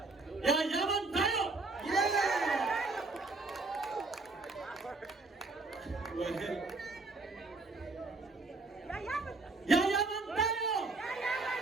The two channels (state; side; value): quieter; left; 3.5 dB